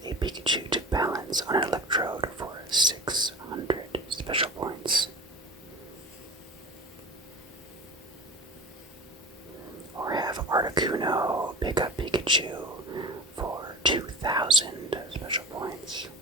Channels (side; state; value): both; normal; correlation 0.33